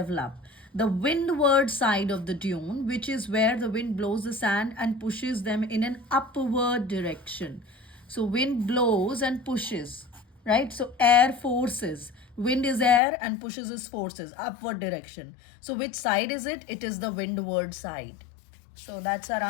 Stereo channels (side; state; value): right; drops out; at 13.0 s